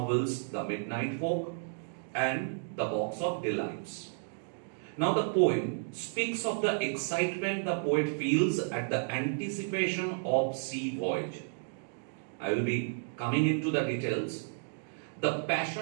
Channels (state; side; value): silent; left; digital silence